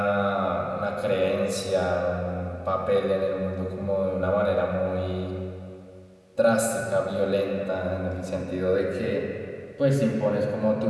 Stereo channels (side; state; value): both; identical; correlation 1.00